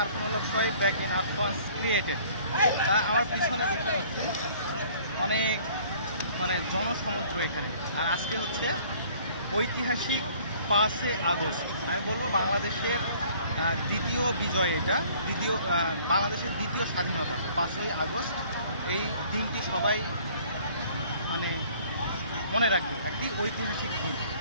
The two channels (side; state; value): both; inverted; correlation -0.55